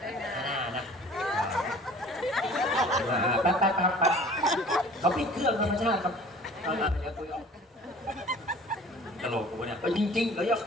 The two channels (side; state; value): both; normal; correlation 0.48